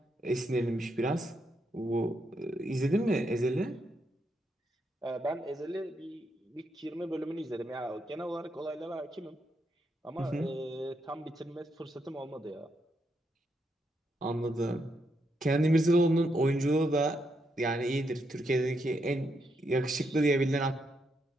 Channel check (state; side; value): normal; both; correlation 0.80